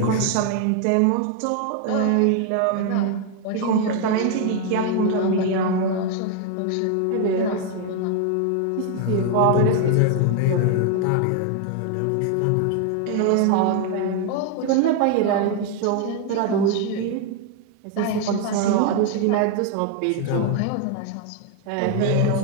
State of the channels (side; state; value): both; different; correlation 0.01